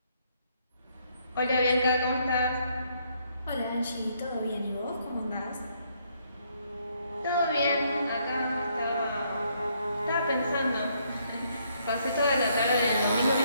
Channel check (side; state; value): both; inverted; correlation -0.71